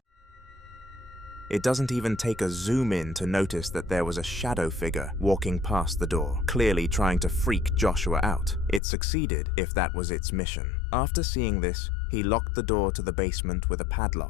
It doesn't even take a zoom in to notice that there was a shadow figure walking past the door, clearly trying to freak Joshua out. It succeeded if that was its mission. After seeing this, he locked the door to the basement with a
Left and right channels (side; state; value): right; drops out; at 8.8 s